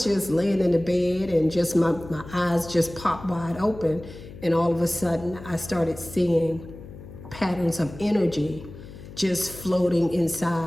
just laying in the bed and just my eyes just popped wide open. And all of a sudden I started seeing patterns of energy just floating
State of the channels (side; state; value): left; noise; hum, 15 dB below the sound